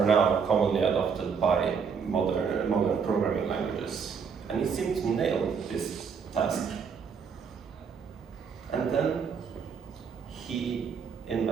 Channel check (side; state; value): left; quieter; 6.3 dB